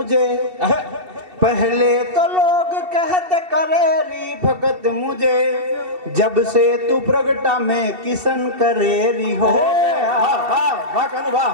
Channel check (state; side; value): late; left; 2.7 ms